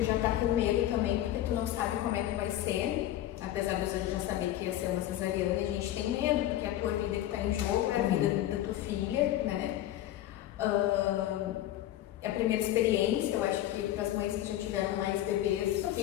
já tá com medo também, porque tu não sabe como é que vai ser, apesar de você já saber que ia ser uma cesariana, a gente tem medo, porque a tua vida que tá em jogo é a vida da tua filha, né. É a primeira experiência, eu acho que para as mães que já tiveram mais bebês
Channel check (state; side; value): quieter; right; 13.3 dB